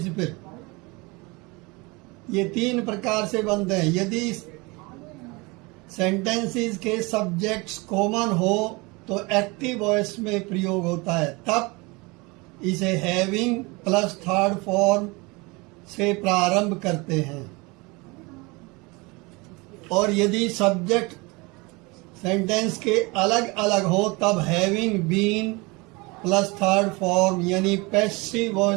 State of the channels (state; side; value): quieter; left; 25.9 dB